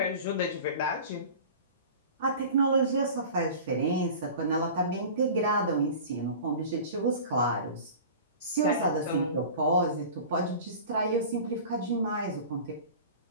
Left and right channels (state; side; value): inverted; both; correlation -0.38